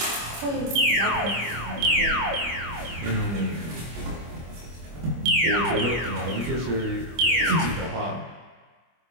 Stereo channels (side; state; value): left; late; 25 ms